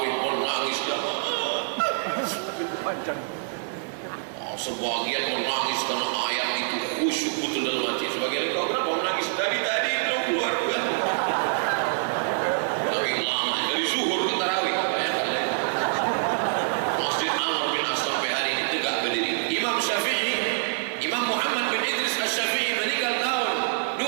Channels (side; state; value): left; silent; 59 dB below the other